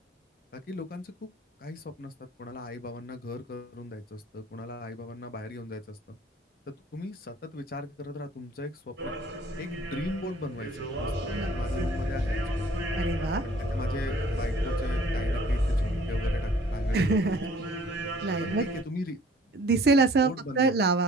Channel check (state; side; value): normal; both; correlation 0.54